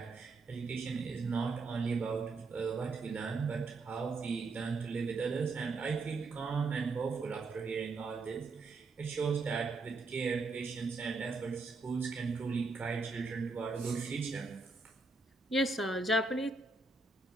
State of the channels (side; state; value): left; quieter; 3.8 dB